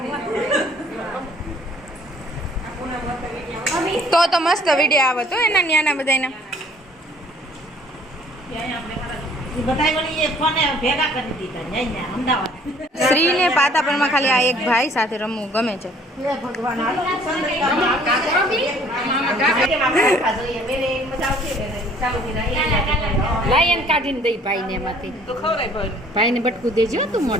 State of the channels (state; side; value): normal; both; correlation 0.57